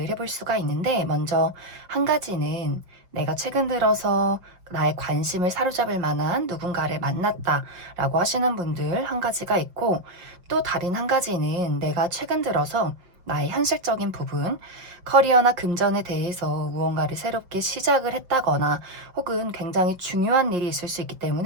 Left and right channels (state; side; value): late; left; 5.6 ms